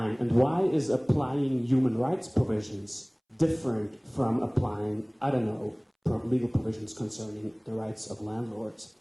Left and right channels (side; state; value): both; identical; correlation 1.00